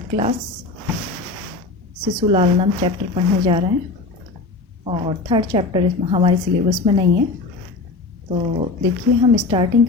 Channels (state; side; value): quieter; right; 3.7 dB